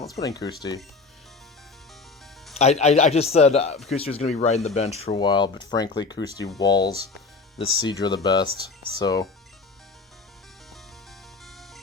put in Kusti. I just said Kusti was going to be riding the bench for a while, but frankly, Kusti walls this Seadra the best, so...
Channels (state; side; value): quieter; right; 4.1 dB